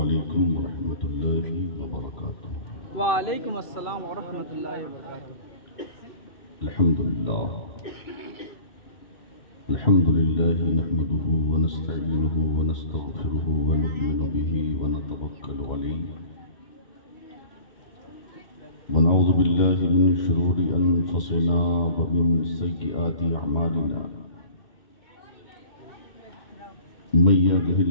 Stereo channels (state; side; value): late; right; 2.6 ms